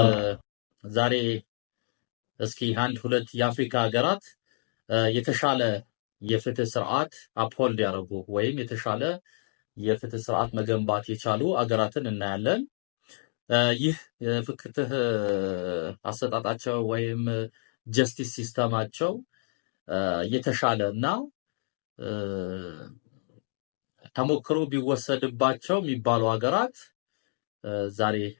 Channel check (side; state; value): right; silent; digital silence